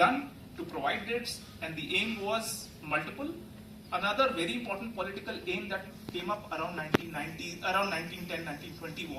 to provide dates, and the aim was multiple. Another very important political aim that came up around 1910, 1920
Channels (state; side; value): identical; both; correlation 1.00